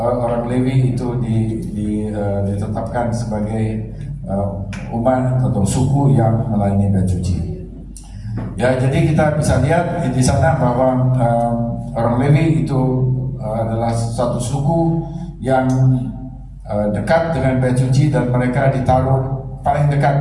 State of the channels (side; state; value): both; identical; correlation 1.00